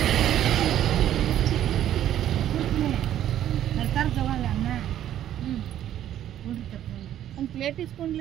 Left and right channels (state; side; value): quieter; left; 11.5 dB